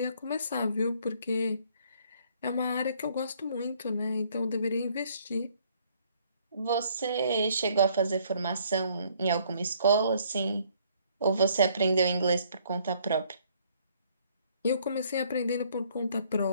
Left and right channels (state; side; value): inverted; both; correlation -0.63